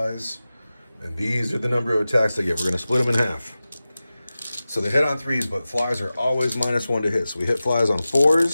and these are the number of attacks they get. We're going to split them in half. So they hit on 3s, but Flies are always -1 to hit. So we hit Flies on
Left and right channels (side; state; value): both; inverted; correlation -0.96